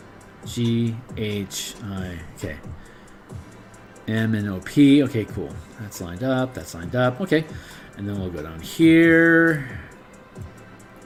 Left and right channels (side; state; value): both; identical; correlation 1.00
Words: GHI. Okay. M and OP. Okay, cool. That's lined up. That's lined up. Okay. And then we'll go down here.